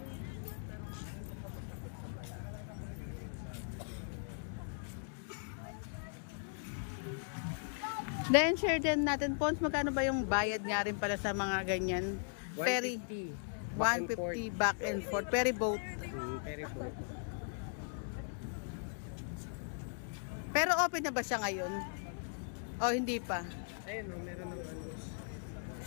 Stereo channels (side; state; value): right; silent; digital silence